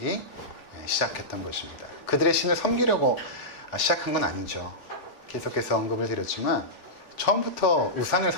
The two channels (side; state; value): right; late; 3.5 ms